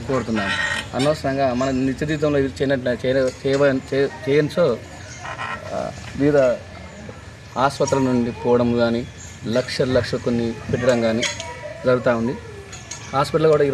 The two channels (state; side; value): identical; both; correlation 1.00